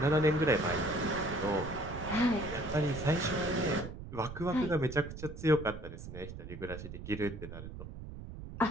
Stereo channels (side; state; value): right; noise; rumble, 10 dB below the sound